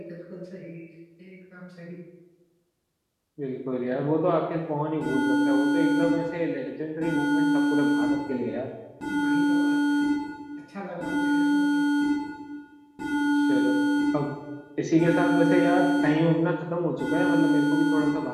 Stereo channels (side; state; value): both; identical; correlation 1.00